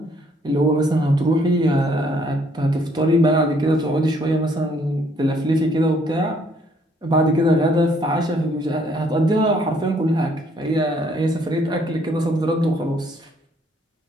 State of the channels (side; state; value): both; normal; correlation 0.66